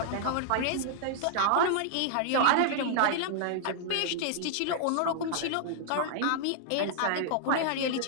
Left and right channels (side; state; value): both; different; correlation -0.01